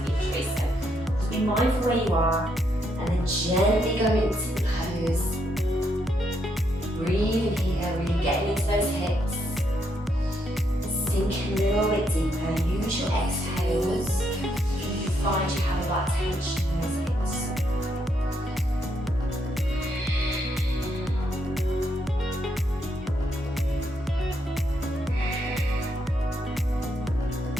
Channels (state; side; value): normal; both; correlation 0.76